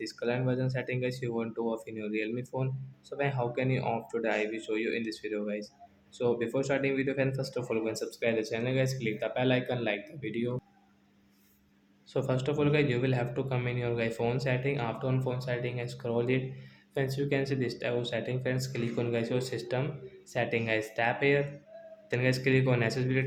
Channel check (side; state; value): both; identical; correlation 1.00